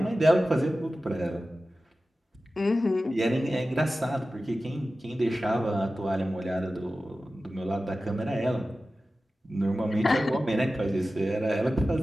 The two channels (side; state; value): both; normal; correlation 0.95